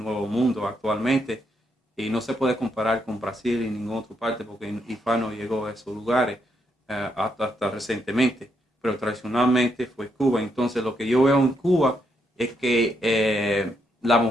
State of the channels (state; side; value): normal; both; correlation 0.77